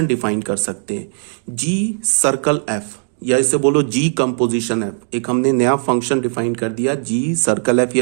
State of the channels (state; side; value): silent; left; 67 dB below the other